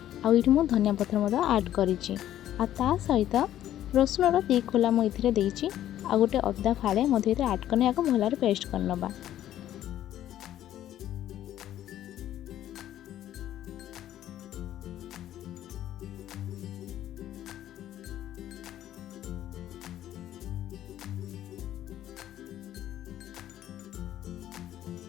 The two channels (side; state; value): right; quieter; 12.2 dB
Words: आठ मु धनिया पत्र आड करी सहित रसुण 2 खोला मुझे देती आ गोटे अदा फाड़े मध्य आड करने भल पेस्ट करनबा।